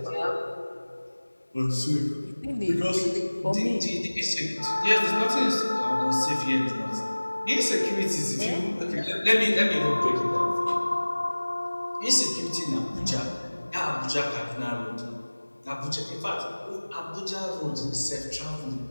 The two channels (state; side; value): inverted; both; correlation -1.00